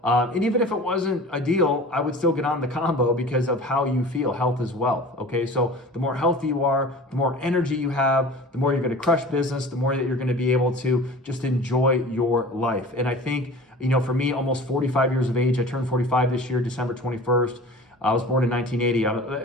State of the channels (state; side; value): normal; both; correlation 0.40